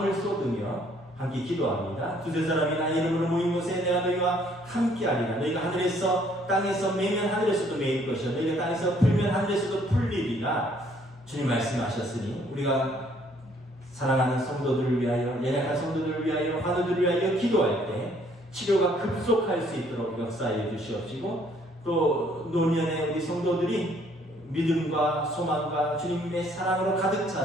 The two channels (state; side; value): normal; both; correlation 0.63